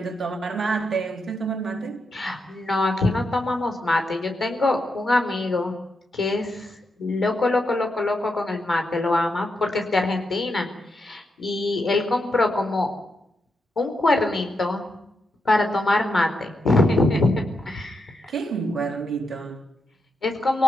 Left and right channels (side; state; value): both; normal; correlation 0.84